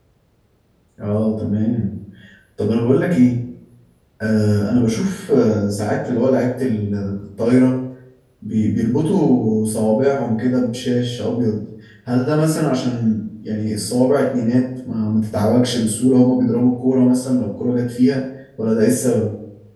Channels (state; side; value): identical; both; correlation 1.00